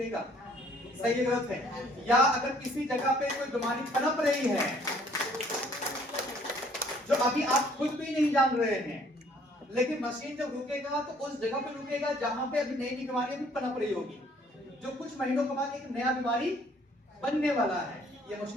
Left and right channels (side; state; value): both; normal; correlation 0.60